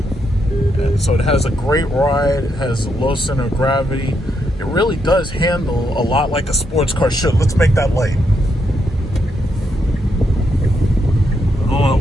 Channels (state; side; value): normal; both; correlation 0.80